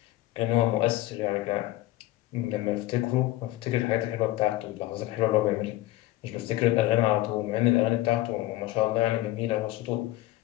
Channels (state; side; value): quieter; right; 16.4 dB